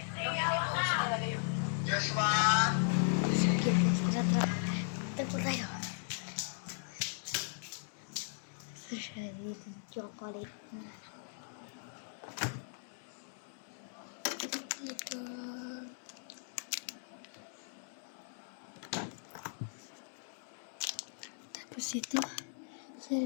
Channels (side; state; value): right; silent; digital silence